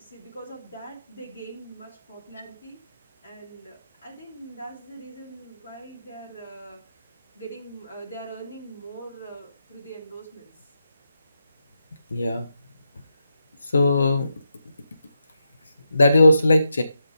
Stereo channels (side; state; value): both; inverted; correlation -0.85